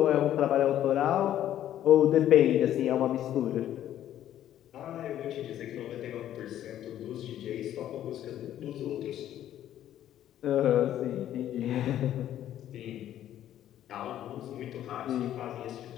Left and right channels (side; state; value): right; quieter; 11.7 dB